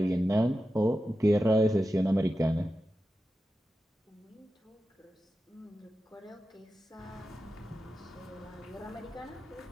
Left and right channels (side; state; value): both; normal; correlation 0.92